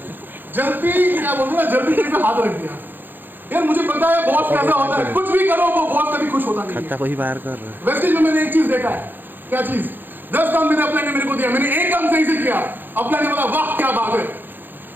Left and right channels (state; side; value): late; left; 0.092 ms